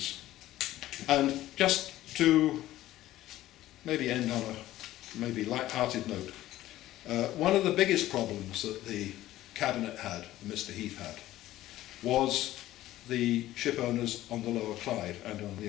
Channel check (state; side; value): quieter; right; 15.0 dB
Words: And just to maybe end on a maybe light-hearted note, one of the biggest problems that the Cabinet had, Mr. Heath had, was the ship owners on the Lower Clyde and on the